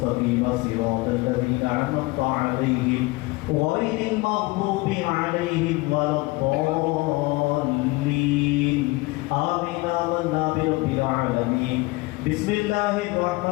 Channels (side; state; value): right; quieter; 22.4 dB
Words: صراط الذين أنعمت عليهم غير المغضوب عليهم ولا الضالين آمين آمنا برب العالمين بسم الله